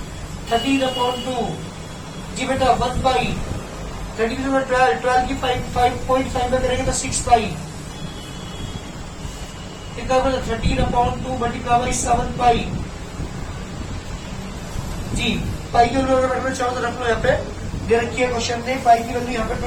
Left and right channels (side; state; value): both; identical; correlation 1.00